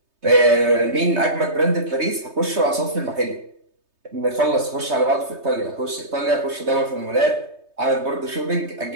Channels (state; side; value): late; left; 3.2 ms